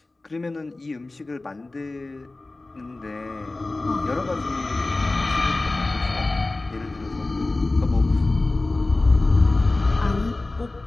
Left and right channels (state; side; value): quieter; right; 3.1 dB